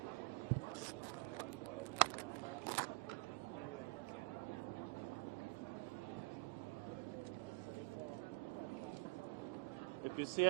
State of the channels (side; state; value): left; quieter; 27.7 dB